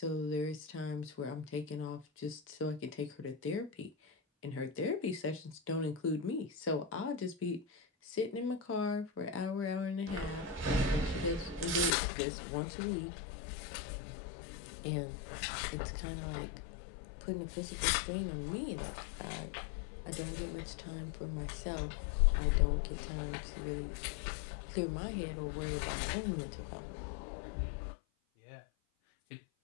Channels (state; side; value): drops out; right; at 12.0 s